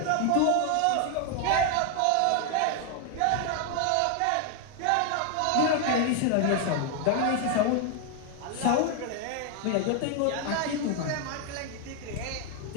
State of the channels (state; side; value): different; both; correlation 0.00